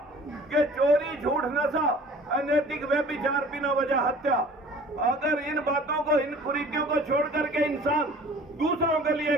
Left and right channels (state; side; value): normal; both; correlation 0.47